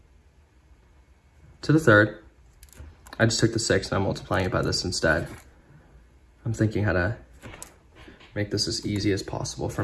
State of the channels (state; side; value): identical; both; correlation 1.00